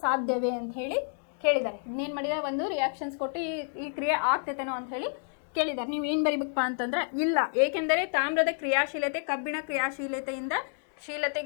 ಸಾಧ್ಯವೇ ಅಂತ ಹೇಳಿ ಕೇಳಿದ್ದಾರೆ. ಇನ್ನೇನು ಮಾಡಿದ್ದಾರೆ, ಒಂದು ರಿಯಾಕ್ಷನ್ಸ್ ಕೊಟ್ಟು ಈ ಕ್ರಿಯೆ ಆಗ್ತೈತೇನೋ ಅಂತ ಹೇಳಿ ಕೇಳಿದ್ದಾರೆ. ನೀವು ಏನು ಬರಿಬೇಕಪ್ಪ ಅಂತಂದ್ರೆ, ಇಲ್ಲ, ಏಕೆಂದರೆ ತಾಮ್ರದ ಕ್ರಿಯಾಶೀಲತೆ ಕಬ್ಬಿಣ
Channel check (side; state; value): right; silent; 58 dB below the other